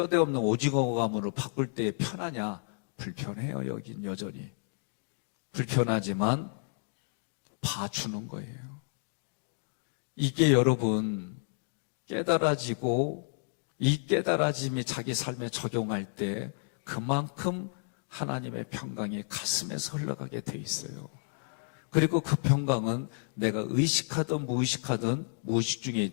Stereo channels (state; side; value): silent; right; digital silence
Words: 없는 오징어 가문으로 바꿀 때 편하냐? 불편해요. 여긴 여전히. 불편하지만 봐주는 거예요. 이게 여러분 깨달아지고 이 깨달아짐이 자기 삶에 적용할 때 그만큼 하나님의 평강이 가슴에서 흘러가게 돼 있어요. 그리고 그 평강은 내가 의식하든 무의식하든 무의식 중에